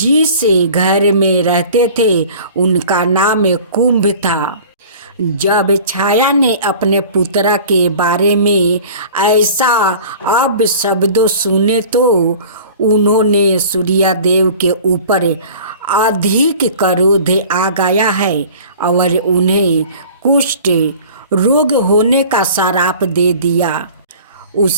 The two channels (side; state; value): both; inverted; correlation -0.44